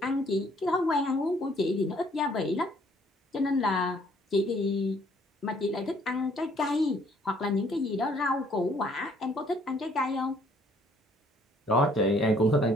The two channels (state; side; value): normal; both; correlation 0.63